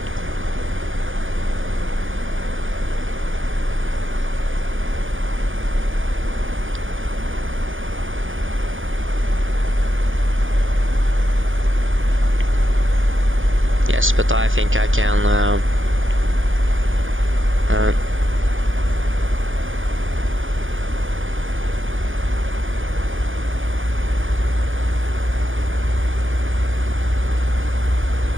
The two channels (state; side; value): late; left; 0.58 ms